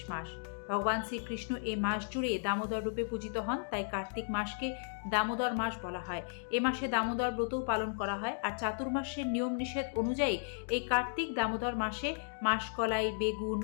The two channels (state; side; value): silent; right; digital silence